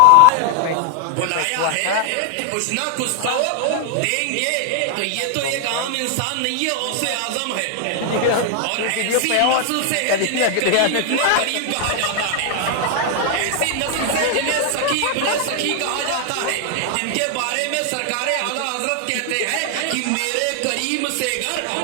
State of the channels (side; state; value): both; different; correlation 0.00